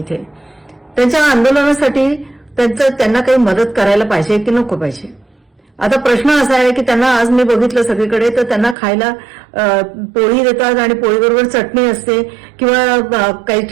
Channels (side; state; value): left; drops out; at 8.8 s